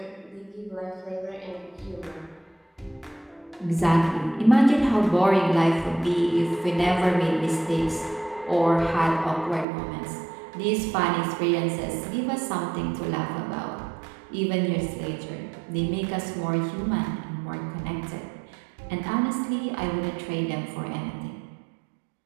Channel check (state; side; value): drops out; left; at 9.7 s